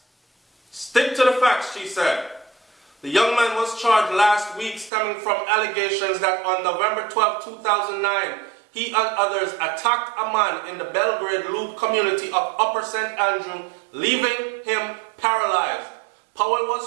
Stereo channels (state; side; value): drops out; left; at 4.9 s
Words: Stick to the facts, she said. The young man was charged last week stemming from allegations that on November 12, 2009, he and others attacked a man in the Belgrade Loop community of Upper St. Andrew, leaving him paralyzed. Powell